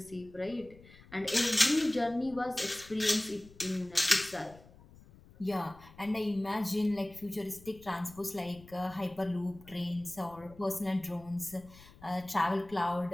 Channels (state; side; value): noise; left; rumble, 22 dB below the sound